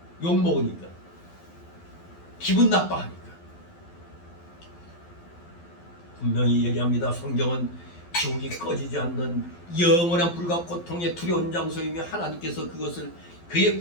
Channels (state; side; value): late; right; 12 ms